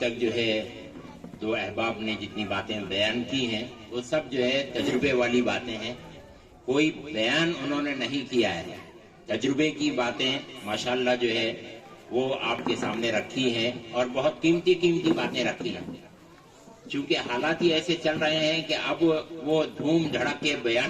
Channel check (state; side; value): identical; both; correlation 1.00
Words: جو ہے دو احباب نے جتنی باتیں بیان کی ہیں وہ سب جو ہے تجربے والی باتیں ہیں، کوئی بیان انہوں نے نہیں کیا ہے، تجربے کی باتیں ماشاءاللہ جو ہے وہ آپ کے سامنے رکھی ہیں اور بہت قیمتی باتیں رکھی ہیں. چونکہ حالات ہی ایسے چل رہے ہیں کہ اب وہ دھوم دھڑک کے